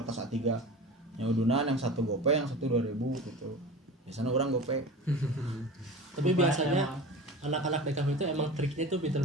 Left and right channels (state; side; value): normal; both; correlation 0.33